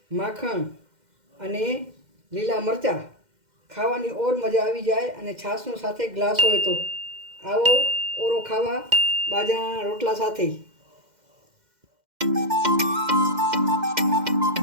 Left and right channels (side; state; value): left; late; 2.1 ms